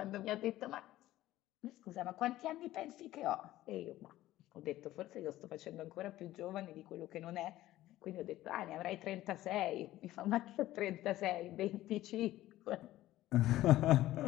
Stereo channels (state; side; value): quieter; right; 15.2 dB